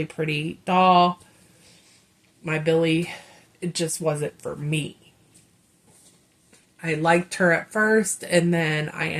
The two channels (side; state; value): both; identical; correlation 1.00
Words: pretty doll. My Billy it just wasn't for me. I liked her at first, and then I